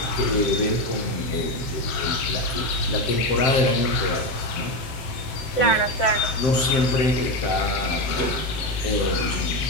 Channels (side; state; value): right; late; 7.7 ms